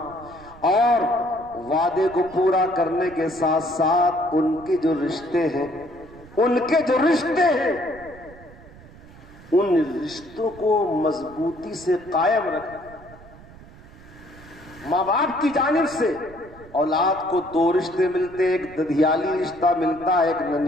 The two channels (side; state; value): right; noise; rumble, 21 dB below the sound